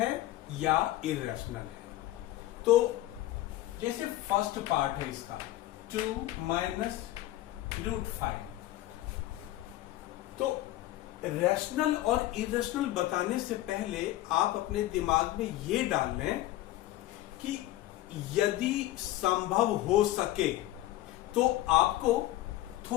या इरेशनल है। तो जैसे फर्स्ट पार्ट है इसका 2 माइनस √5, तो रैशनल और इरेशनल बताने से पहले आप अपने दिमाग में ये डाल लें कि यदि संभव हो सके तो आपको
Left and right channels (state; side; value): quieter; right; 15.5 dB